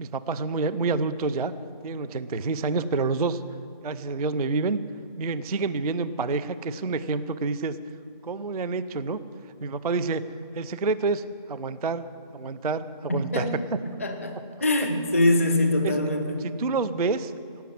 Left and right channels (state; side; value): inverted; both; correlation -0.44